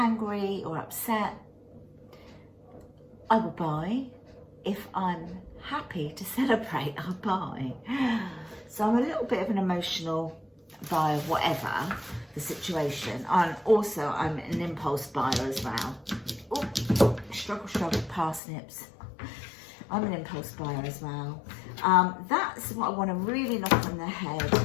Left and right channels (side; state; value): right; drops out; at 18.4 s